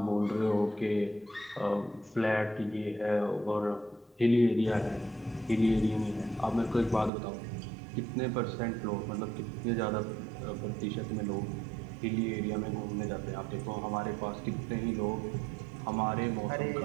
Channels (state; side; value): drops out; left; at 7.1 s